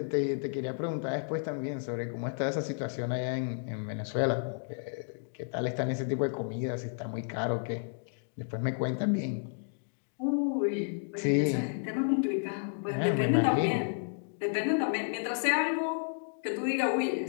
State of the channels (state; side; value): silent; right; digital silence